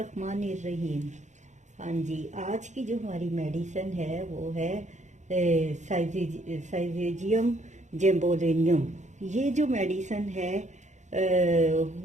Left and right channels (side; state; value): left; late; 0.34 ms